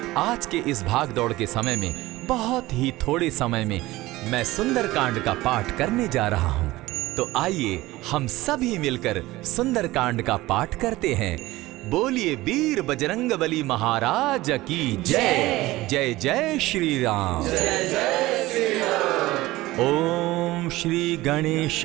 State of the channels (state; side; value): quieter; left; 18.5 dB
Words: आज के इस भाग दौड़ के समय में बहुत ही थोड़े समय में मैं सुंदरकांड का पाठ करने जा रहा हूँ। तो आइए हम सभी मिलकर सुंदरकांड का पाठ करते हैं। बोलिए वीर बजरंगबली महाराज की जय। जय जय श्री राम। जय जय श्री राम। ओम श्री